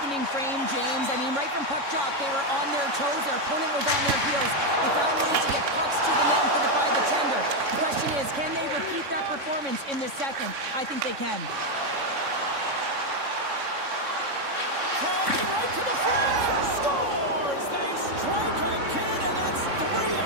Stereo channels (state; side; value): late; left; 3.6 ms